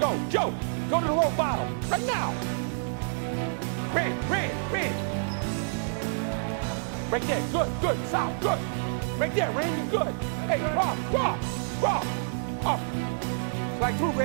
Joe. Go to the low bottom. Right now. Ran. Right there. Good. South. Good. Right there, Randy. Good. Hey, Rob. Up. Strike through,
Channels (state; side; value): silent; left; 59 dB below the other